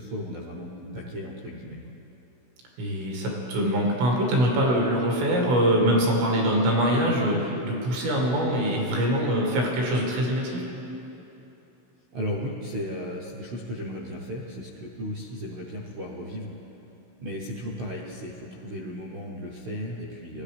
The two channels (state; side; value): late; left; 16 ms